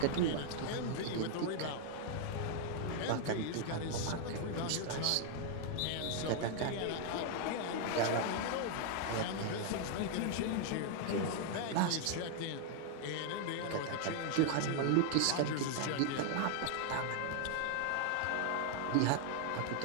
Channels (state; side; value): different; both; correlation 0.00